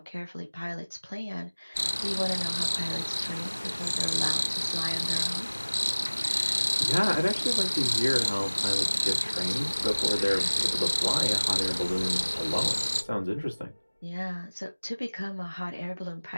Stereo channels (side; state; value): both; inverted; correlation -1.00